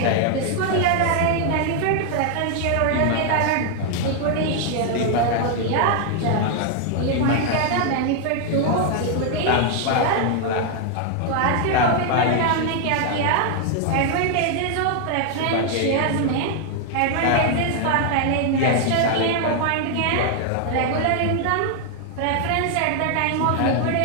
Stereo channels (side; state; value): both; different; correlation 0.00